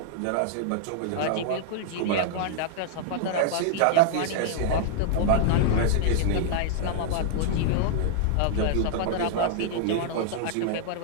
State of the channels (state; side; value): different; both; correlation -0.01